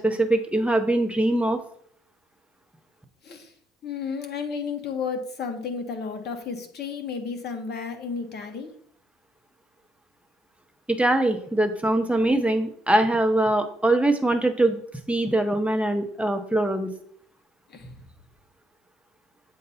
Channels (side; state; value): both; normal; correlation 0.82